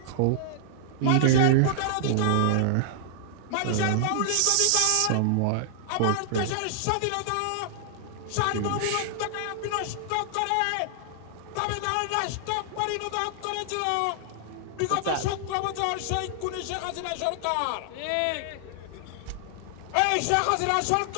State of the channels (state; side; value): different; both; correlation -0.01